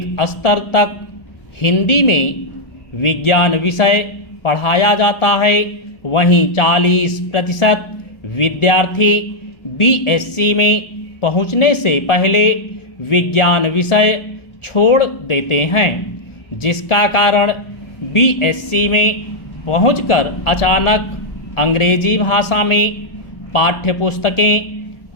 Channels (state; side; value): late; right; 1.4 ms